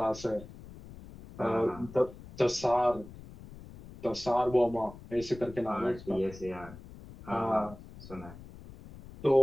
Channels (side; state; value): left; noise; rumble, 17 dB below the sound